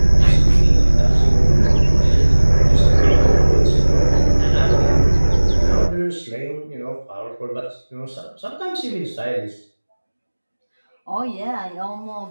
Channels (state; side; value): inverted; both; correlation -1.00